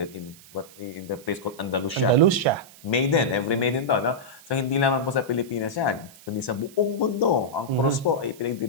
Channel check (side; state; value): right; noise; hiss, 22 dB below the sound